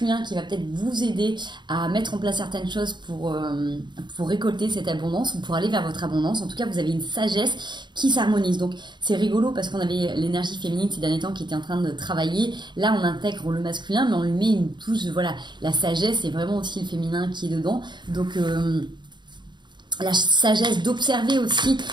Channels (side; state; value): left; late; 0.22 ms